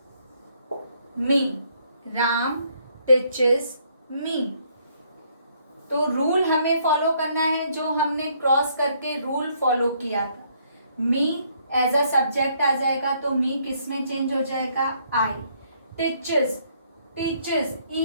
me, Ram teaches me। तो रूल हमें फॉलो करना है जो हमने क्रॉस करके रूल फॉलो किया था। मी एज अ सब्जेक्ट आ जाएगा तो मी किस में चेंज हो जाएगा? I. Teaches, teaches E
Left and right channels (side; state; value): both; inverted; correlation -0.68